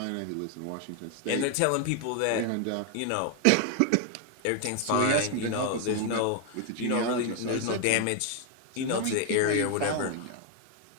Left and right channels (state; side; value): different; both; correlation 0.01